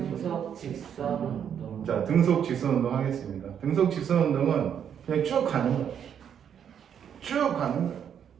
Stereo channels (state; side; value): quieter; left; 8.5 dB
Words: 직선 운동. 자, 등속 직선 운동 하겠습니다. 등속 직선 운동은 그냥 쭉 가는 거예요. 쭉 가는 거예요.